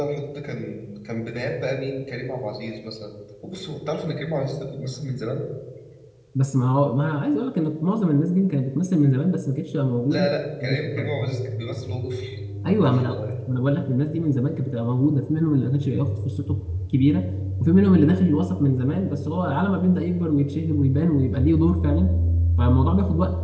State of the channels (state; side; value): identical; both; correlation 1.00